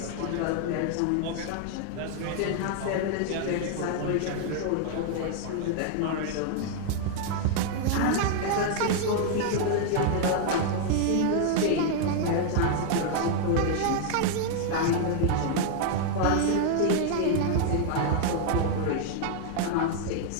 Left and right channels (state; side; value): different; both; correlation 0.00